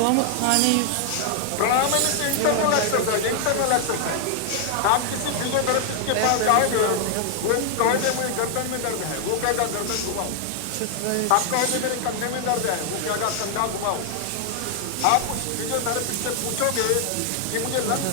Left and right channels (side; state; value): both; different; correlation 0.00